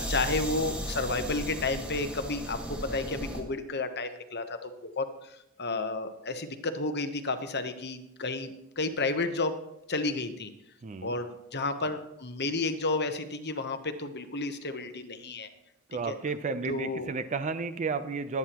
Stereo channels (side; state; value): both; normal; correlation -0.03